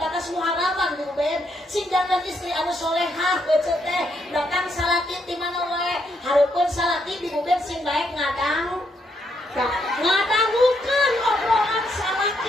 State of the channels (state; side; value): normal; both; correlation 0.76